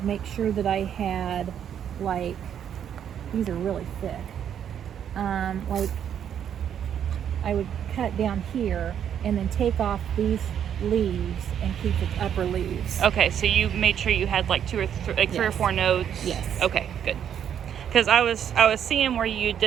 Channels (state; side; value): quieter; left; 9.1 dB